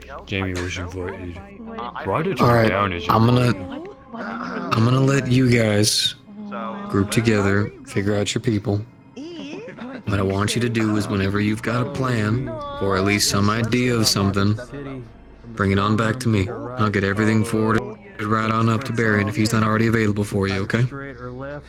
Jamie was invited. Write it All right, down as I'm gonna let you guys group together, figure out your people. What I want you to do is whenever you've got a plan, or at least some idea of something, bring it on back to me. I'll get everything forwarded right on up to Barry if he's not already available for you, okay?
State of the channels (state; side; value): identical; both; correlation 1.00